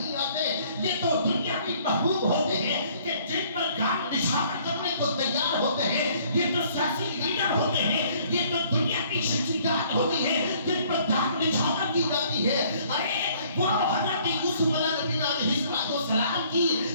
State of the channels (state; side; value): inverted; both; correlation -0.60